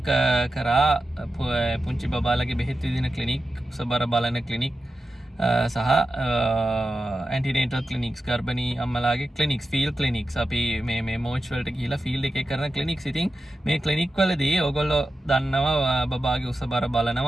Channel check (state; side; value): normal; both; correlation 0.91